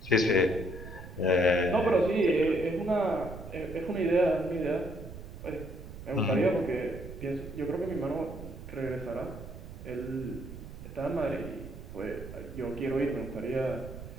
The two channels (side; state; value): right; noise; rumble, 12 dB below the sound